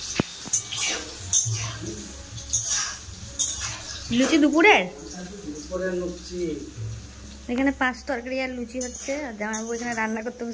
লুচি দুপুরের এখানে 5 তরকারি আর লুচি হচ্ছে। আর জামাইবাবু এখানে রান্না করতে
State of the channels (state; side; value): identical; both; correlation 1.00